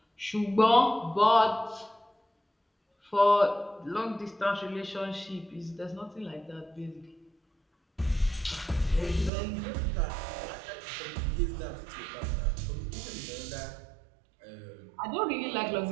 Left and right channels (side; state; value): left; drops out; at 9.3 s